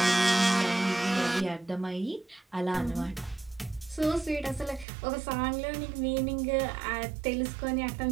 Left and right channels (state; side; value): drops out; left; at 4.9 s